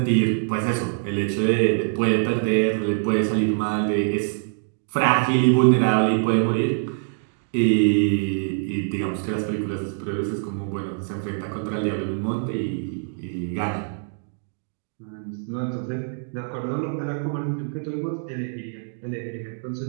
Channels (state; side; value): silent; left; digital silence